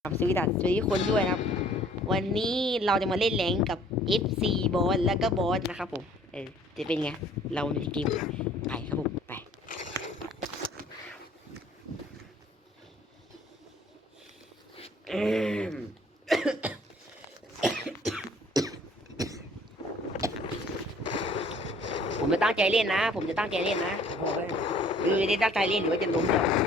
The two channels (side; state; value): both; normal; correlation 0.56